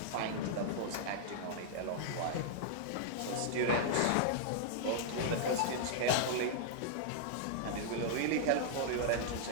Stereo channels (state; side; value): different; both; correlation -0.01